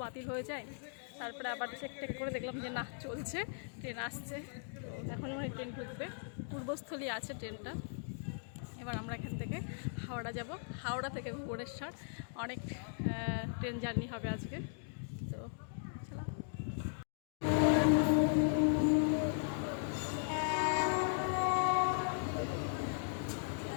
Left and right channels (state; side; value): silent; right; digital silence